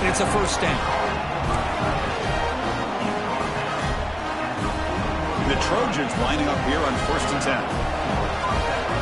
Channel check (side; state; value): both; identical; correlation 1.00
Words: it's a first down. The Trojans lining up here on 1st and 10.